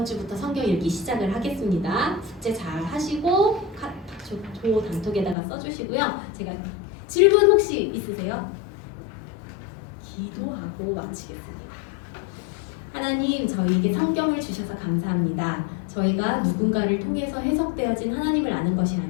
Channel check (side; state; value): right; drops out; at 5.4 s